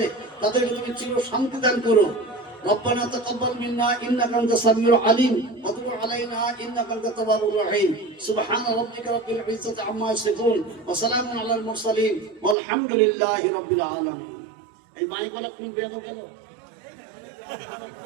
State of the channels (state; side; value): drops out; left; at 12.6 s